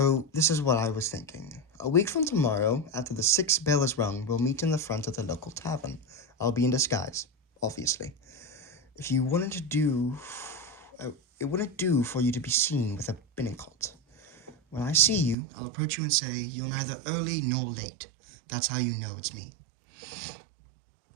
this is what I was thinking. A week from tomorrow, after the 6th bell is rung, we'll meet in the front of the local tavern. I'll be in disguise, obviously. If you wanted to do... it wouldn't do for you to be seen with a binnacle. When I see you, I'll approach you and say, you're neither early nor late. That's how you know it's me.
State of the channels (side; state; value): left; drops out; at 15.4 s